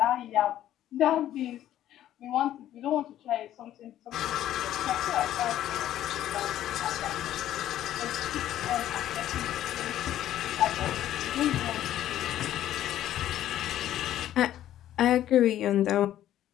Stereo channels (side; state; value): right; quieter; 12.4 dB